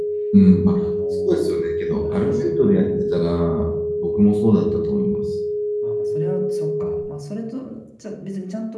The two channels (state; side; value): identical; both; correlation 1.00